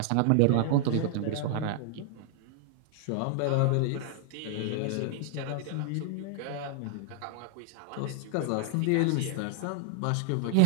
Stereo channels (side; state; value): both; different; correlation 0.00